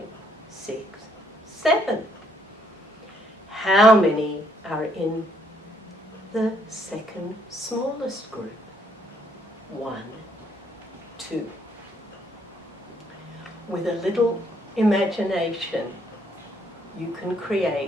6, 7. How many are in the second smallest group? 1, 2. With a little imagination, you can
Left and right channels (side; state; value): both; normal; correlation 0.68